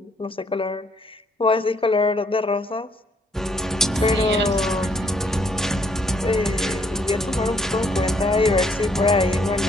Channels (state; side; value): normal; both; correlation 0.68